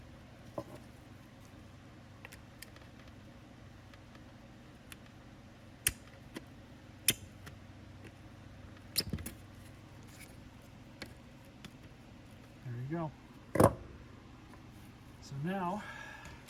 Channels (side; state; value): both; identical; correlation 1.00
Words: There you go. So now,